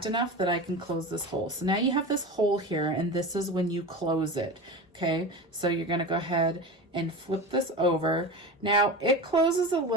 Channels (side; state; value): both; normal; correlation 0.28